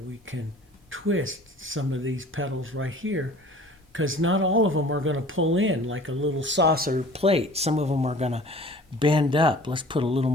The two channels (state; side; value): normal; both; correlation 0.46